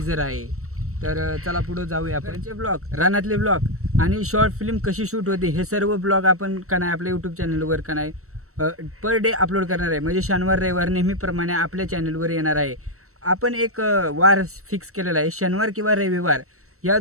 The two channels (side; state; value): left; late; 0.63 ms